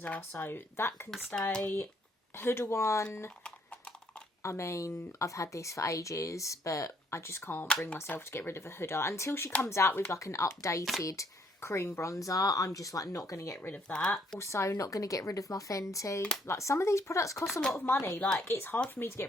so that can stay. Huda one. I mean, I've had this for ages, but I just can't bring myself to get rid of a Huda. Until she comes out with, like, an updated cream bronzer, I'm just, like, not going to get rid of that. Also, not going to get rid of my Fenty. Like, some of these products cost a lot of money. Like, it's hard for me to get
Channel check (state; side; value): normal; both; correlation 0.67